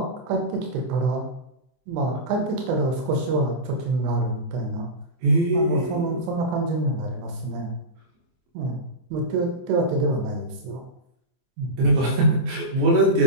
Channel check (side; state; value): left; late; 23 ms